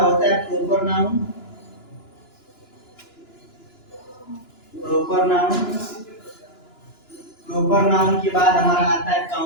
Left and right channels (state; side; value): late; right; 2.9 ms